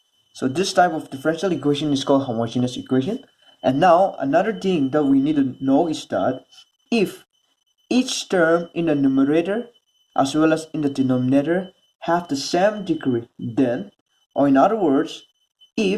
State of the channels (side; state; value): both; identical; correlation 1.00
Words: So this type of differential equation is called homogeneous equation. And now another thing that we need to know is that if each term in the numerator as well as in the denominator have the same degree, then, or in other words,